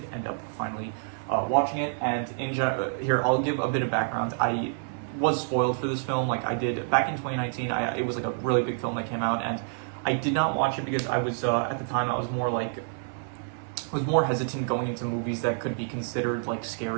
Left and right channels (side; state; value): left; silent; 59 dB below the other